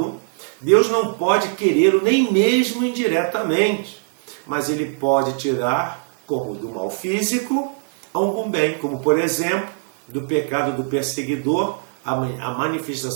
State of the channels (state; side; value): silent; left; 65 dB below the other